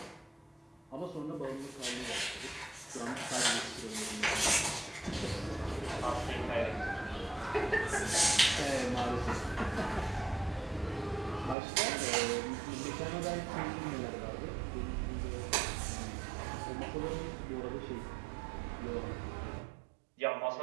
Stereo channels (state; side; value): drops out; left; at 11.6 s